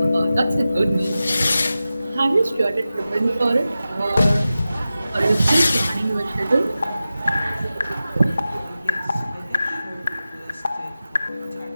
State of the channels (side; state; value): both; inverted; correlation -0.94